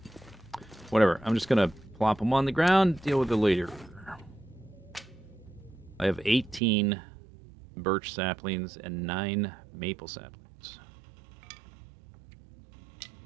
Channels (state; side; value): drops out; left; at 6.6 s